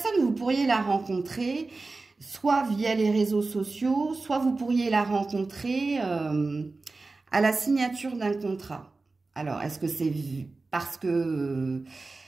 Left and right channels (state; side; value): quieter; left; 3.6 dB